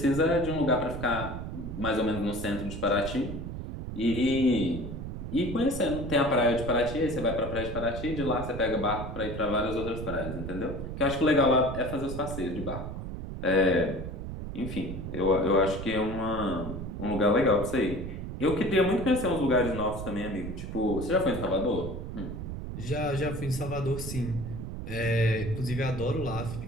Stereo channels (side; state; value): right; noise; rumble, 7 dB below the sound